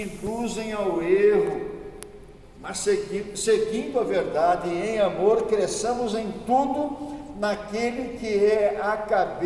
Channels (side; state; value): both; identical; correlation 1.00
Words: induzem ao erro, mas seguindo a verdade e em amor, cresçamos em tudo naquele que é a